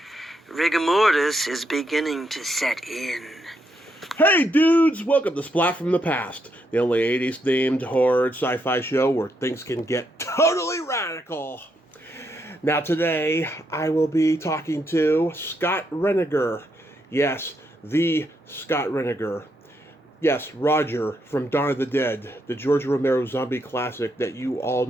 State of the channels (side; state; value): both; normal; correlation 0.78